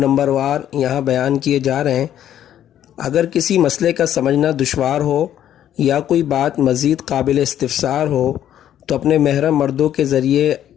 वार यहाँ बयान किए जा रहे हैं। अगर किसी मसले का समझना दुश्वार हो या कोई बात मज़ीद काबिल इस्तिफ़सार हो तो अपने महरम मर्दों के ज़रिए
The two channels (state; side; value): quieter; right; 11.0 dB